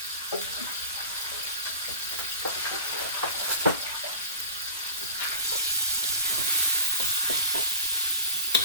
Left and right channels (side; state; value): both; inverted; correlation -0.39